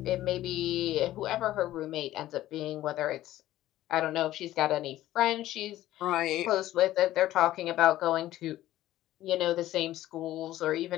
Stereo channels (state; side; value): quieter; right; 14.5 dB